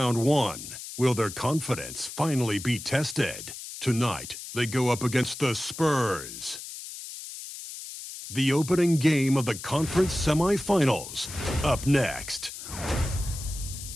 1. Will their confidence finally be tested? Tonight, they go up against the Spurs. The opening game of the conference semifinals. Up next.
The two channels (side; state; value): left; noise; hiss, 11 dB below the sound